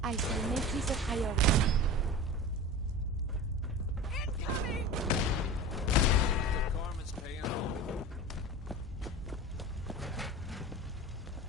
I shall make this a priority.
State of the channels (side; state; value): both; normal; correlation 0.32